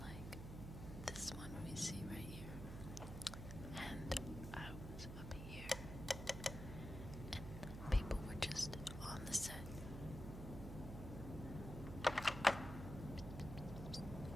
like this one we see right here. And I was up here. And people were just on the set.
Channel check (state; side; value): noise; right; hum, 8 dB below the sound